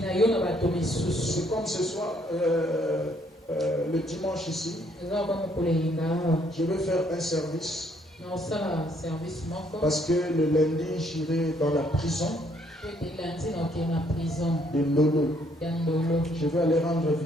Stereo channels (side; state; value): both; normal; correlation 0.68